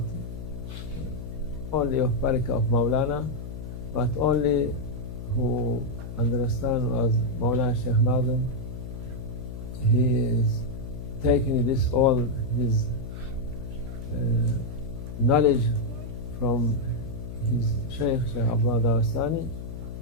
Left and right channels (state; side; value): noise; left; hum, 9 dB below the sound